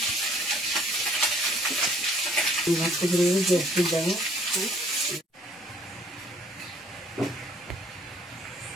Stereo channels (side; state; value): both; normal; correlation 0.60